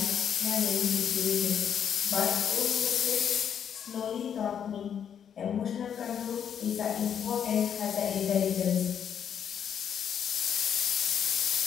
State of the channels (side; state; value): right; quieter; 8.4 dB